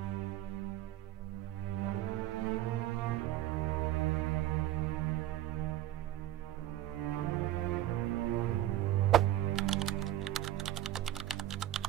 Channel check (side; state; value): left; quieter; 13.5 dB